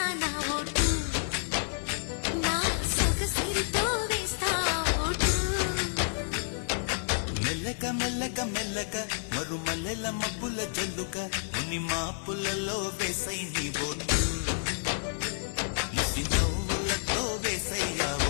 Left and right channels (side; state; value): right; silent; 58 dB below the other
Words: నా ఓటు, నా సొగసిరితో వేస్తా ఓటు. మెల్లగా మెల్లగా మెల్లగా మరుమల్లెల మబ్బుల జల్లుగా ముని మాపులలో వేసై నీ ఓటు, ముసి నవ్వులతో వేసయ్యా